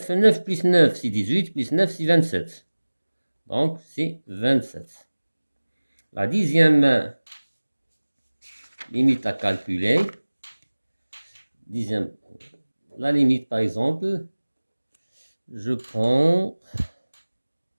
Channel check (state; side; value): inverted; both; correlation -1.00